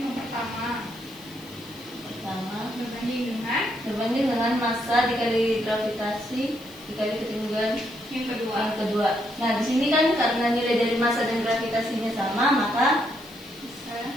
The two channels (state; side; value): noise; left; hiss, 22 dB below the sound